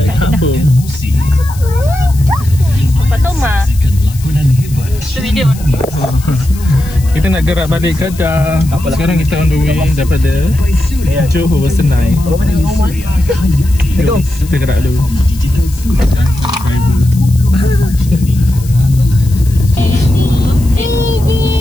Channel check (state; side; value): noise; left; hiss, 18 dB below the sound